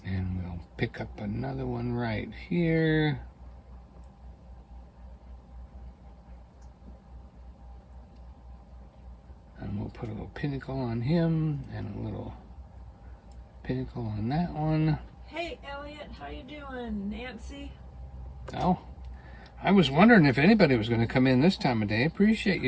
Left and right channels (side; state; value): both; identical; correlation 1.00